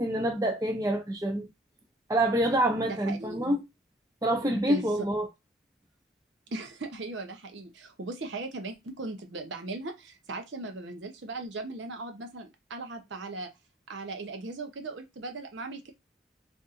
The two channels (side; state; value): both; normal; correlation 0.56